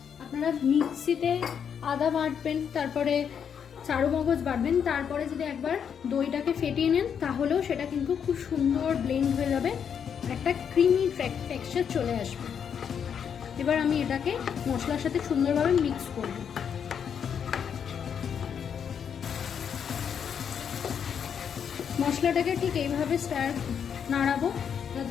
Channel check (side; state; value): right; quieter; 7.6 dB